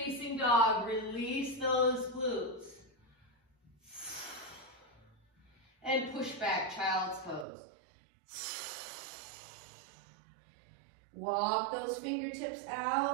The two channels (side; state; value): left; drops out; at 7.5 s